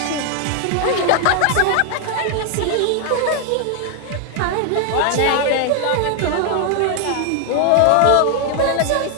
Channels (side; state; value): both; different; correlation 0.00